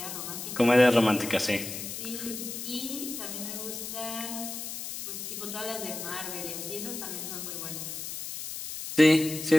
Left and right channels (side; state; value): left; noise; hiss, 7 dB below the sound